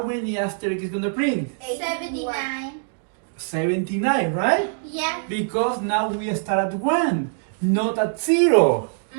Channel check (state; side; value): silent; left; digital silence